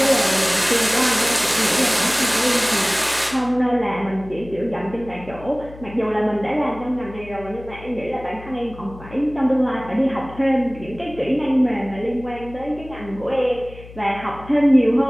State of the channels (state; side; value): noise; left; hum, 17 dB below the sound